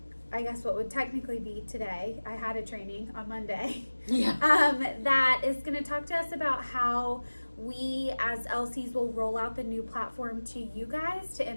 I guess what would technically be today. I had a training on Monday. That is going to talk to us about how we as LCs will roll out the new platform to you guys to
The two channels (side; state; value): both; inverted; correlation -1.00